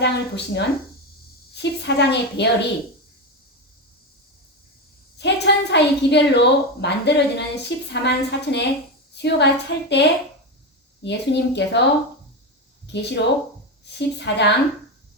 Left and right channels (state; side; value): normal; both; correlation 0.15